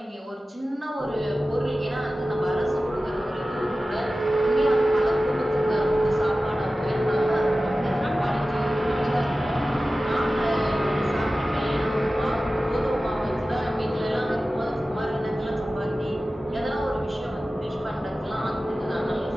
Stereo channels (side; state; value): both; normal; correlation 0.95